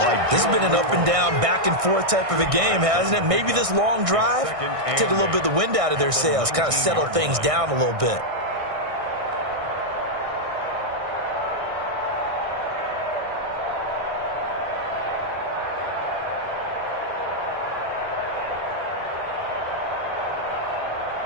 This has been an up and down, back and forth type of a game, hasn't it? Maybe this long drive take a little bit of the wind out of their sails, kind of settle things down a little bit.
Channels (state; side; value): late; left; 1.6 ms